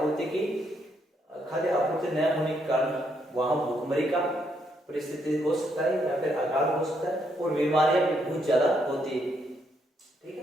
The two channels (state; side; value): normal; both; correlation 0.75